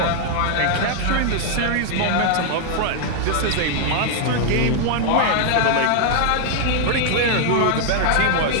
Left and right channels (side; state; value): both; different; correlation 0.00